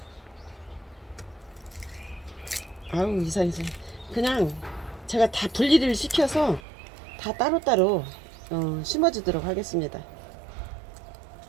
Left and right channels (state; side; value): drops out; left; at 6.6 s